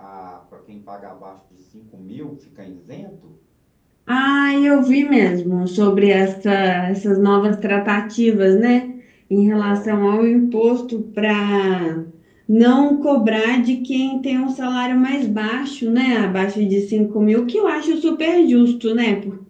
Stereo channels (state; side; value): identical; both; correlation 1.00